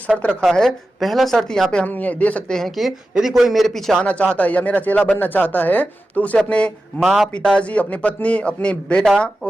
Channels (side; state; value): both; normal; correlation 0.93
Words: रखा है। पहला शर्त यहाँ पे हम ये दे सकते हैं कि यदि कोई मेरे पीछे आना चाहता है या मेरा चेला बनना चाहता है तो उसे अपने माँ पिताजी, अपनी पत्नी, अपनी बेटा